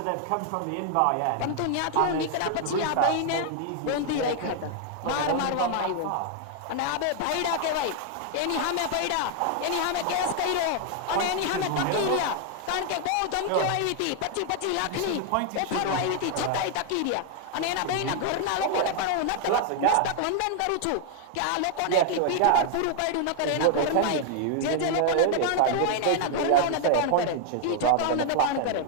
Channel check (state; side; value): different; both; correlation 0.00